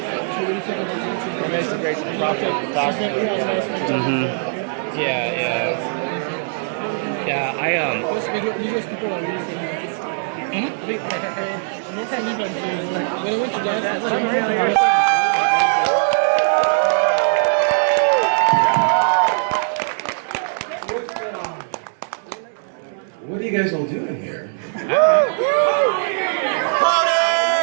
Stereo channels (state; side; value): silent; left; digital silence